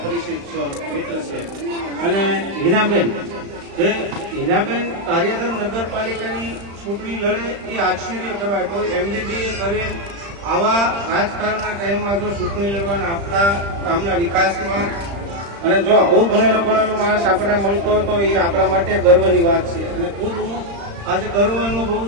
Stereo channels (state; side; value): late; left; 35 ms